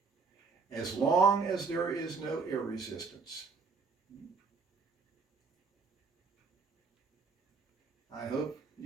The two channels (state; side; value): quieter; left; 4.8 dB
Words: as long as there is no air resistance. I hope